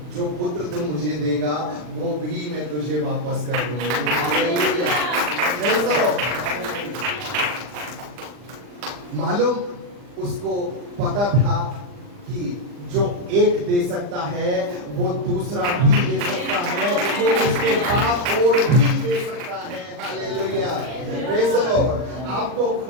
जो पुत्र तुम मुझे देगा वो भी मैं तुझे वापस कर दूंगी, मालूम उसको पता था कि जो एक दे सकता है वो दूसरा भी दे सकता है, वो उसके बाद और भी दे सकता है, हालेलुया, प्रेज़ द लॉर्ड। आपको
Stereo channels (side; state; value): left; late; 40 ms